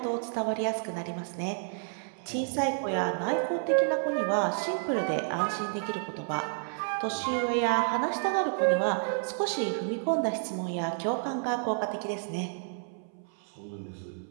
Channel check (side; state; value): left; silent; 58 dB below the other